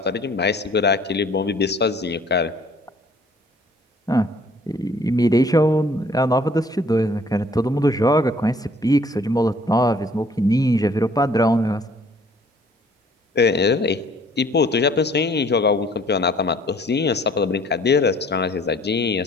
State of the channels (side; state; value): both; normal; correlation 0.57